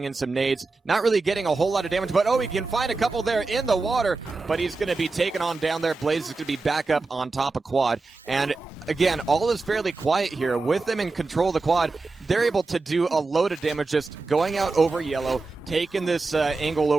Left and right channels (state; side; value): quieter; left; 3.7 dB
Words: in some nades. Not really getting a whole lot of damage, but he can find a couple there in the water, but he's going to be taken on down there. Blaze is going to be back up on top of quad. And again, all is fairly quiet here. With them in control of the quad, they're able to do a load of damage just going out over yellow, taking this angle